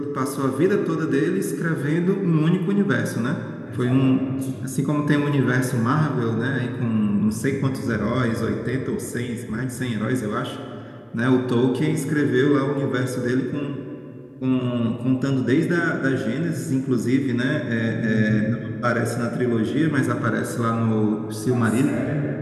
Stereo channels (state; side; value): identical; both; correlation 1.00